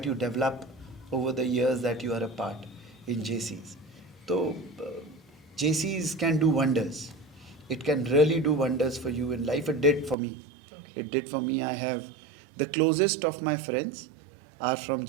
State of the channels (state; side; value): drops out; left; at 10.2 s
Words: you develop over the years that you are a part in JCs. So, JCs can do wonders. It can really do wonders for you in life. It did for me. Okay. It did for me. I have the closest of my friends are from